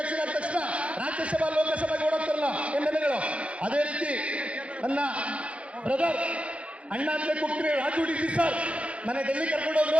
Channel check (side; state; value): left; late; 0.062 ms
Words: ಆದ ತಕ್ಷಣ ರಾಜ್ಯಸಭಾ ಲೋಕಸಭೆಗೆ ಓಡೋಗ್ತಾರಲ್ಲ MLAಗಳು, ಅದೇ ರೀತಿ ನನ್ನ ಬ್ರದರ್ ಅಣ್ಣ ಅಂತ ಕೂಗ್ತೀನಿ ರಾಜು ಡಿ ಸರ್ ನನ್ನ ಡೆಲ್ಲಿ